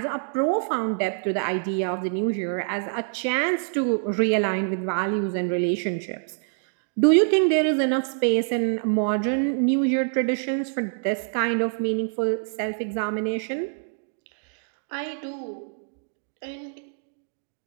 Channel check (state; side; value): silent; left; digital silence